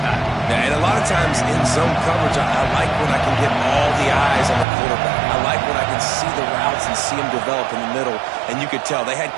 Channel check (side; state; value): left; drops out; at 4.7 s